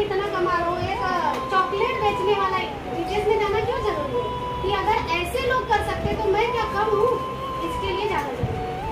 इतना कमा रहा हूँ, एक चॉकलेट बेचने वाला GTS में जाना क्यों जरूरी है? कि अगर ऐसे लोग कर सकते तो मैं क्या कम हूँ? इसके लिए जाना जरूरी है।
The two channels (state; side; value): identical; both; correlation 1.00